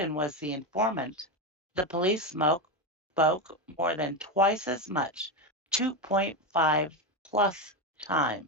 was the informant, the police spoke more than twice as much, 2.5 plus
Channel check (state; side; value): normal; both; correlation 0.12